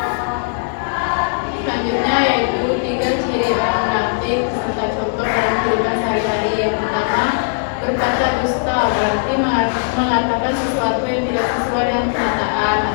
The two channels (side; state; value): right; silent; 67 dB below the other